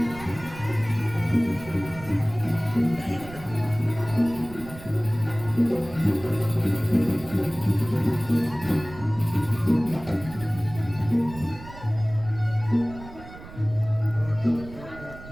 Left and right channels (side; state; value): right; noise; rumble, 16 dB below the sound